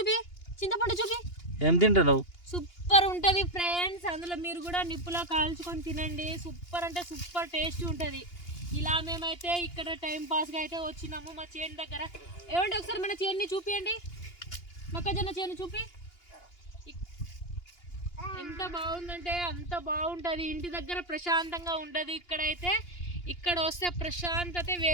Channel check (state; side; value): late; right; 2.8 ms